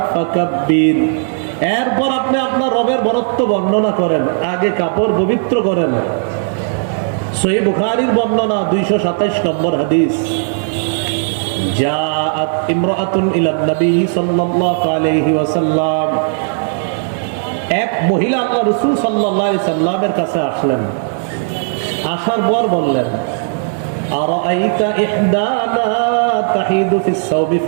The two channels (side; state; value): left; silent; digital silence